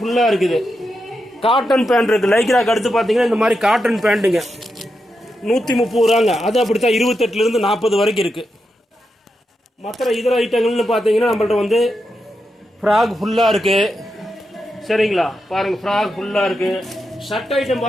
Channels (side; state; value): both; normal; correlation 0.86